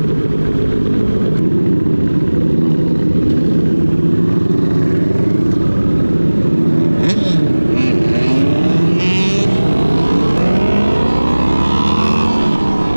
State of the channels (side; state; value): both; inverted; correlation -1.00